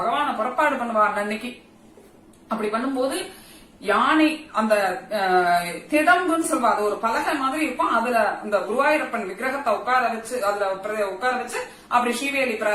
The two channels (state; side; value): identical; both; correlation 1.00